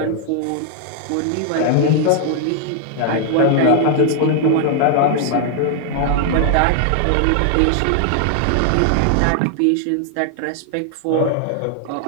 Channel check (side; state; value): both; different; correlation 0.00